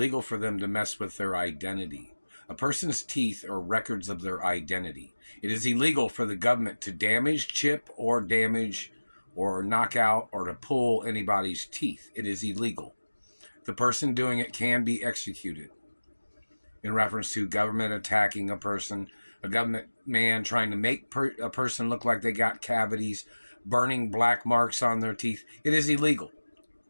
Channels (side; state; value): both; inverted; correlation -1.00